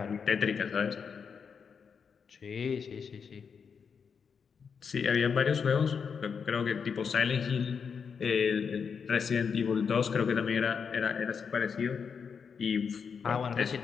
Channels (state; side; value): quieter; right; 6.3 dB